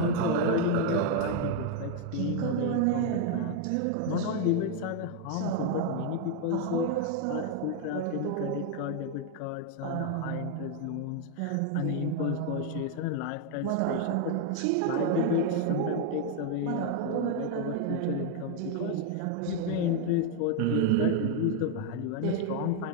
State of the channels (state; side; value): different; both; correlation 0.01